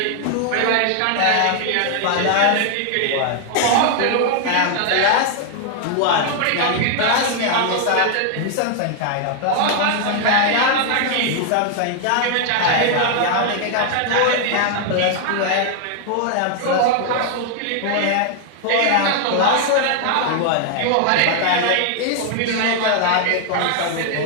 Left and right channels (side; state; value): both; different; correlation 0.00